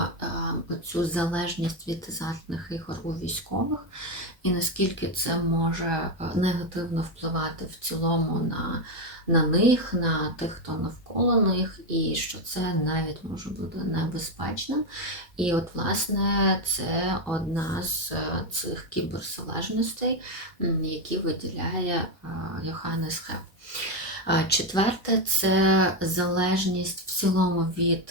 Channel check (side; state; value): both; normal; correlation 0.08